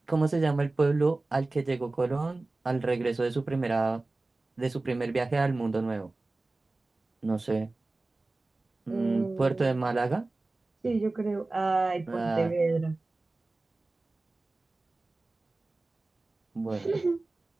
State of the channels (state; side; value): quieter; left; 3.2 dB